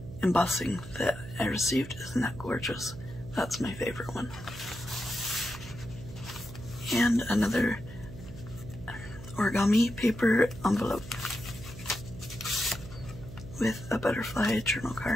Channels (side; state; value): right; noise; hum, 13 dB below the sound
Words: embossing that I received. Isn't that gorgeous? That's my favorite one. And another origami paper envelope with a butterfly journal